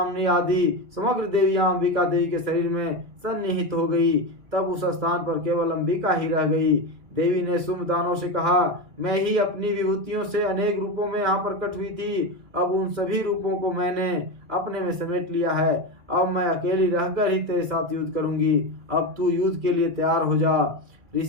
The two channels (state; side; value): late; left; 2.4 ms